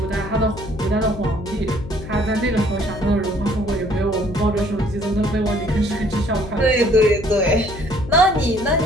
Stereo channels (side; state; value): left; noise; hum, 12 dB below the sound